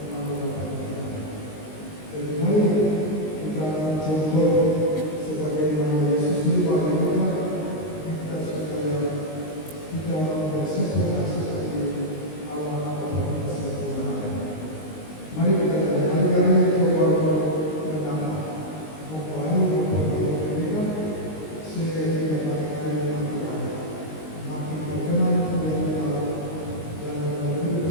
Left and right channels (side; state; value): right; late; 19 ms